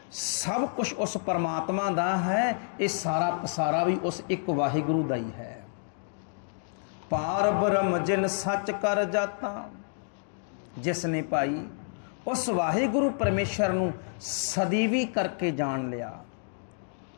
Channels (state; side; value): silent; right; digital silence